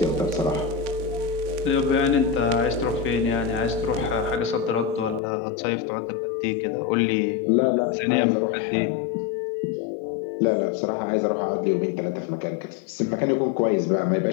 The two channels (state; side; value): drops out; right; at 5.2 s